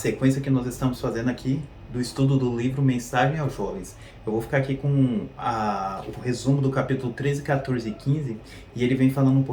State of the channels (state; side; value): identical; both; correlation 1.00